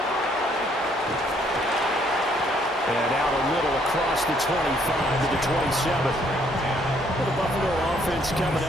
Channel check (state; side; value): normal; both; correlation 0.67